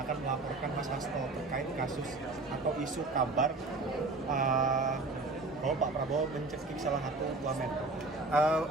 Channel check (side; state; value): left; quieter; 3.4 dB